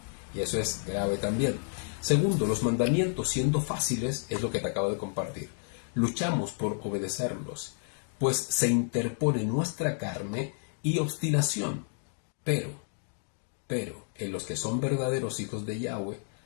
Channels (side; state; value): right; silent; 57 dB below the other